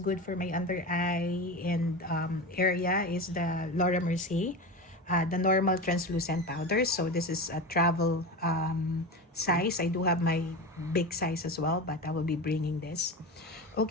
for my under eye and area, is the Laura Mercier. The normal translucent powder. So this is a travel size. I do have my big size as well, but I will be bringing this.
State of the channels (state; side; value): normal; both; correlation 0.24